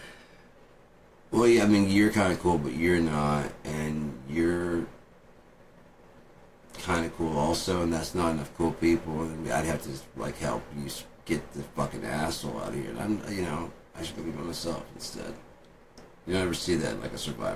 Well, yeah, I mean, you're kind of cool, but you're not, and you're kind of cool also, and that's not enough cool people, and I'd have to like help you get the fucking asshole out of here. And I'm, you know, I should go be by myself instead. You don't ever see that in like a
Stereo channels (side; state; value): both; identical; correlation 1.00